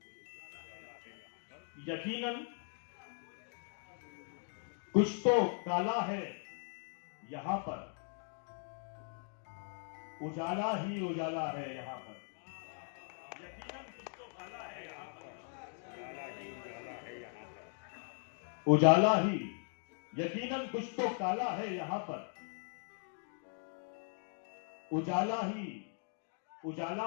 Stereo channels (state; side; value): silent; right; 52 dB below the other